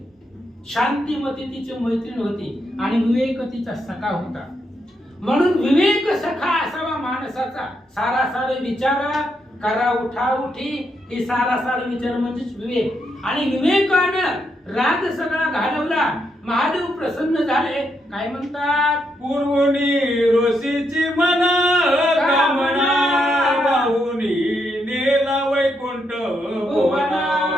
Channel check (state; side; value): normal; both; correlation 0.79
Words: शांतिमती तिची मैत्रीण होती आणि विवेक तिचा सखा होता. म्हणून विवेक सखा असावा माणसाचा. सारासार विचार करा उठा उठी ही सारासार विचार म्हणजेच विवेक. आणि विवेकानं राग सगळा घालवला. महादेव प्रसन्न झाले. काय म्हणतात? पूर्वनी ऋषीची मना कामना वाहुनी नेला वैकुंठ भुवना.